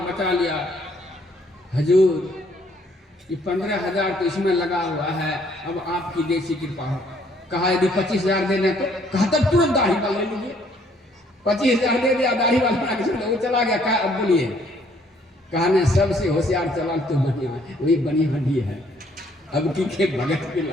बचा लिया। हजूर ये 15,000 तो इसमें लगा हुआ है, अब आपकी देसी कृपा हो। कहा यदि 25,000 देने तो? कहा तब तुरंत दाढ़ी बाल ले लीजिए। 25,000 दे दिया, दाढ़ी बाल बना के वो चला गया। कहा अब बोलिए? कहा ने सबसे होशियार चला तो बनिया, वही बनी हड्डी है। अब की के भगत के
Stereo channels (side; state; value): both; normal; correlation 0.64